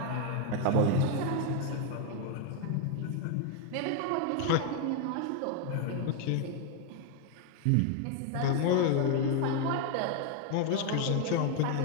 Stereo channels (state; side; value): different; both; correlation 0.01